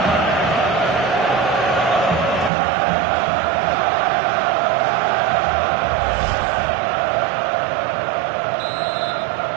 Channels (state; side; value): drops out; left; at 2.5 s